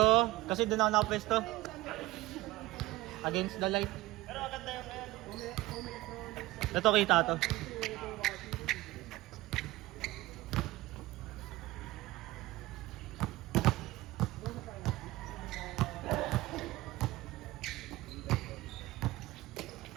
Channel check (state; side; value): quieter; left; 18.8 dB